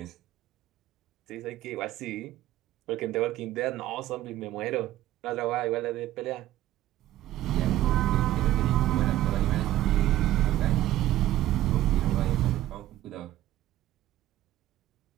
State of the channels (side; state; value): left; quieter; 14.1 dB